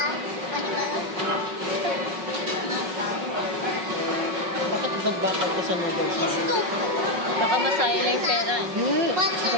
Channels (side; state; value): left; late; 5.4 ms